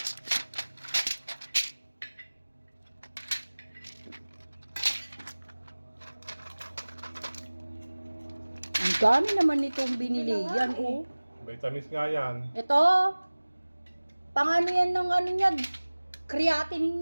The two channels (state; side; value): inverted; both; correlation -1.00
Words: Ang dami naman nitong binili. Hindi na nga, Yan, oh. Vitamins nga yan. Ito. Pang ano yan ng ano niya.